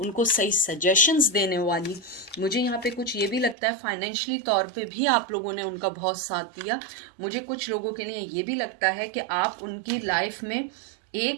सही सजेशंस देने वाली। मुझे यहाँ पे कुछ ये भी लगता है फाइनेंशियली तौर पे भी आप लोगों ने उनका बहुत साथ दिया। मुझे कुछ लोगों के लिए ये भी लगता है कि आप उनकी लाइफ में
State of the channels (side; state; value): left; drops out; at 3.6 s